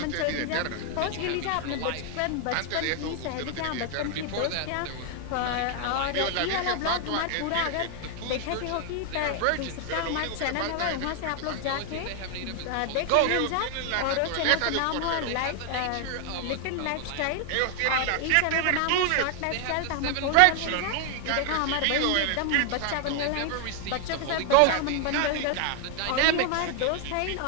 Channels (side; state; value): both; different; correlation 0.00